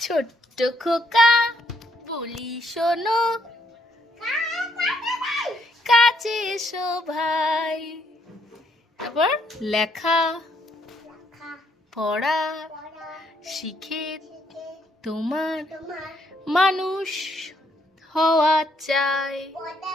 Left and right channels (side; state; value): both; normal; correlation 0.72